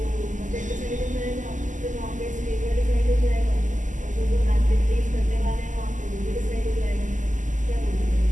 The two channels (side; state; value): left; late; 0.37 ms